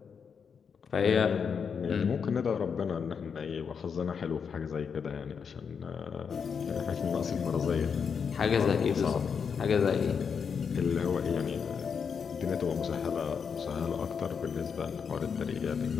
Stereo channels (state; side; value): quieter; right; 6.4 dB